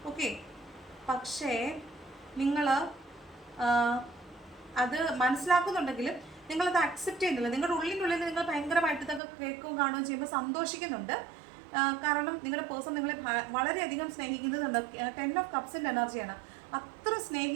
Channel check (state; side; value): drops out; left; at 9.2 s